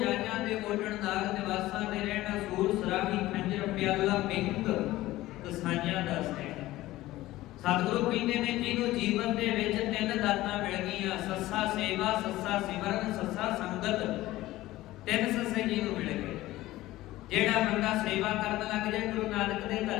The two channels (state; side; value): quieter; right; 16.8 dB